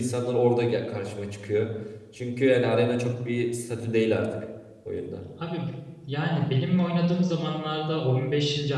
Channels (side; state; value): both; identical; correlation 1.00